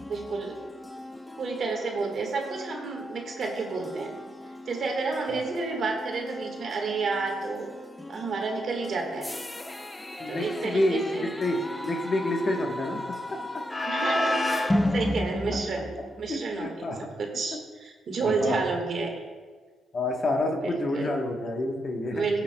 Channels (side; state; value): both; normal; correlation 0.82